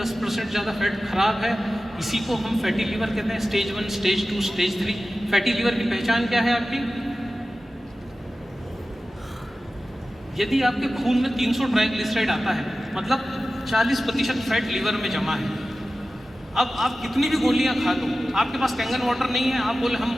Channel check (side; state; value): both; normal; correlation 0.95